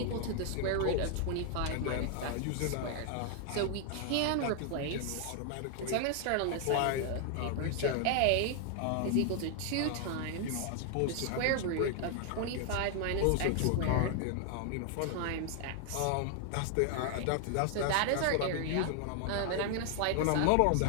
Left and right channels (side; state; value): both; different; correlation 0.00